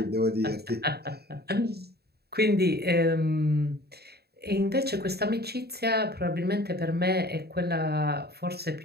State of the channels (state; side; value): late; left; 0.47 ms